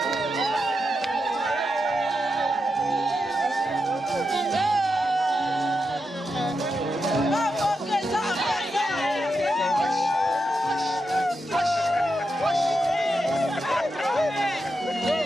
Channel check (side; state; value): both; normal; correlation 0.86